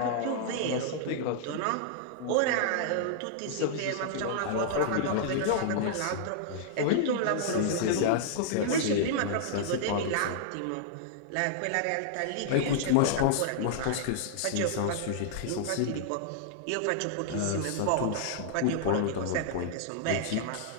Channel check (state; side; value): different; both; correlation -0.01